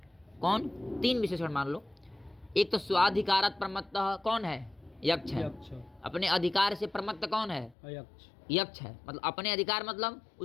कौन? 3 विशेषण मान लो। एक तो स्वाधिकारात् प्रमत्तः, कौन है? यक्ष है। अपने अधिकार से प्रमत्त कौन है? यक्ष है। मतलब अपने अधिकार मतलब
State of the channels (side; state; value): right; drops out; at 7.8 s